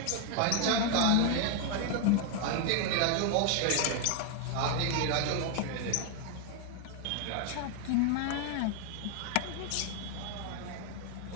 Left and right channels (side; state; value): both; different; correlation 0.00